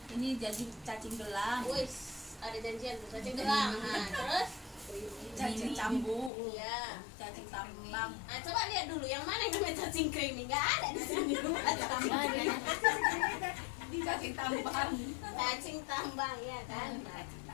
Ini jadi cacing gelang, Wis, ada janjian tuh cacing gelang. Nah, terus cacing cambuk, iya. cacing tambang. Nah, coba lihat dulu yang mana yang namanya cacing creamy. Enggak ada di sini. Cacing tambang. Cacing tambang ya kan.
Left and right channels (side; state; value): right; drops out; at 6.3 s